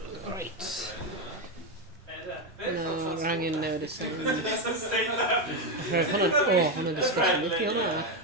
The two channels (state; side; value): normal; both; correlation 0.08